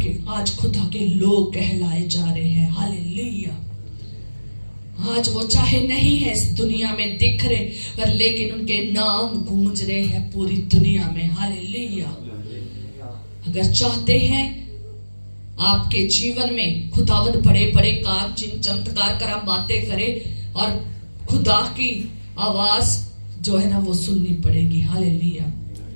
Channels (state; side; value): inverted; both; correlation -1.00